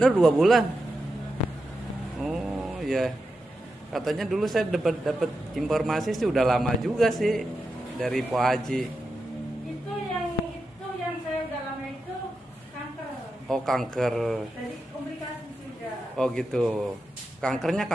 2 bulan. Oh ya, katanya dulu saya dapat informasi sih udah lama juga sih dari Po Haji. Itu yang saya udah lama itu kanker. Oh kanker. Jadi komplikasi sudah. Oh gitu. Kankernya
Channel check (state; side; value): normal; both; correlation 0.88